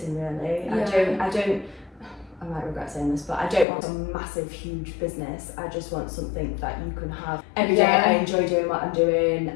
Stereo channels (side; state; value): right; drops out; at 3.7 s